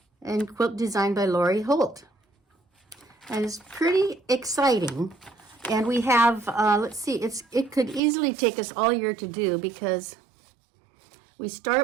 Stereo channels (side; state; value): left; drops out; at 8.0 s